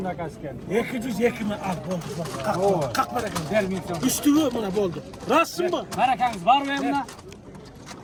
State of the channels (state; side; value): identical; both; correlation 1.00